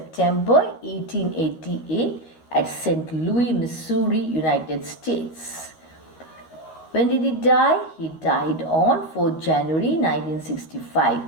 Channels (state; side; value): late; right; 13 ms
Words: 1888 at St. Louis, Missouri, United States. When did he die? He died on 4th January